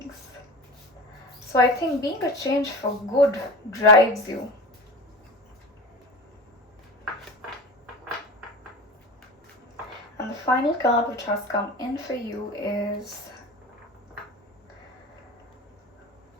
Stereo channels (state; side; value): normal; both; correlation 0.31